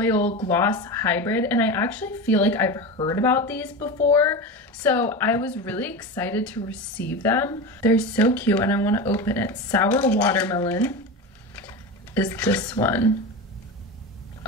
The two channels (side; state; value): both; normal; correlation 0.24